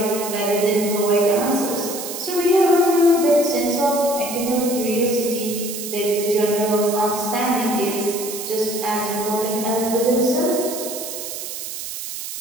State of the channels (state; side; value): noise; right; hiss, 8 dB below the sound